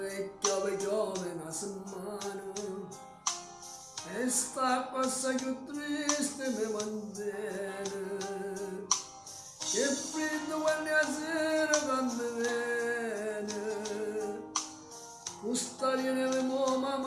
e piove una settimana e sta cosa più triste mi mantiene, che freddo quando la sera quando viene, questa viene mo ma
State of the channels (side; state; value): both; identical; correlation 1.00